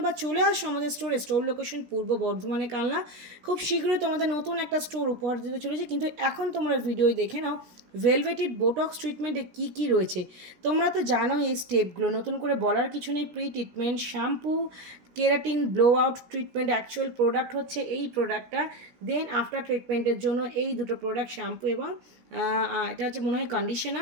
বা চলে আসো আমাদের স্টোর লোকেশন পূর্ব বর্ধমানে কালনা। খুব শীঘ্রই তোমাদের নতুন একটা স্টোর উপহার দিতে চলেছে, কিন্তু এখন তোমরা ভিডিওই দেখে নাও ভেলভেটের বোটক্স ট্রিটমেন্টে কী কী রয়েছে। তোমরা তো জানো এই স্টেপগুলো, নতুন করে বলার কিছু নেই। Pre treatment, shampoo, keratin, blow out treatment, actual product হচ্ছে এই প্রোডাক্টটা। দেন আফটার ট্রিটমেন্টের জন্য এই দুটো প্রোডাক্ট, শ্যাম্পু এবং এটা হচ্ছে মনে হয়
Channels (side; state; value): left; late; 17 ms